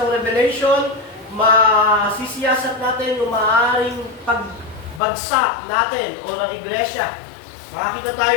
Revelation, masisiyasat natin yung maaaring pagbagsak natin o ng iglesia. Makakita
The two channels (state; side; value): drops out; right; at 5.0 s